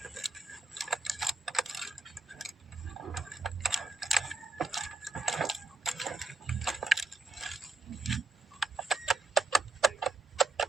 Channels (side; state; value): left; quieter; 3.4 dB